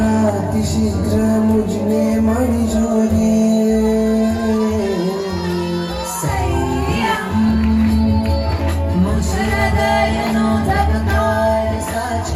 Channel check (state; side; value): identical; both; correlation 1.00